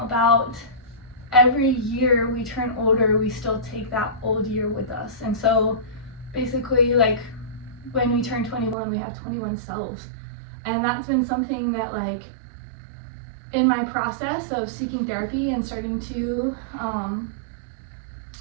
every year we turn older, we still take that old year with us. And so basically like when we turn 21, we have 21 selves. And that's been something that like in my process of seeking therapy and starting to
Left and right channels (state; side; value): drops out; left; at 8.8 s